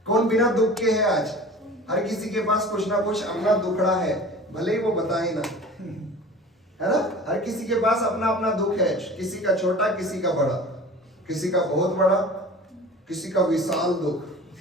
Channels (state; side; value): normal; both; correlation 0.40